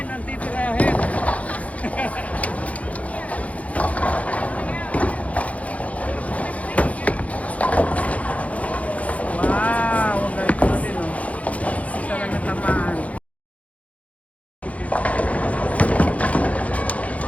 ang titirahin. Wow! Ang galing ko din oh. Isa lang natamaan.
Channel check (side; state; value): right; late; 0.067 ms